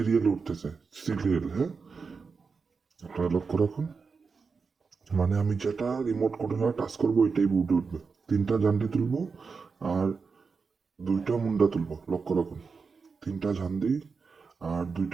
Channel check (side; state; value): left; quieter; 5.0 dB